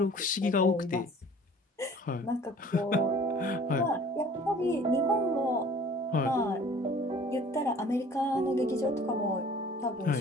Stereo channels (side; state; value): both; normal; correlation 0.50